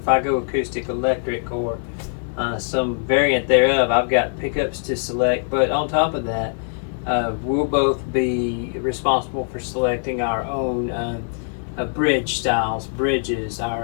I go acoustic electric or some variant thereof, I've got pickups to select. But on top of that, we'll both be responsible for selecting our own bridge styles, bridges,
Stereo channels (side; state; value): right; silent; digital silence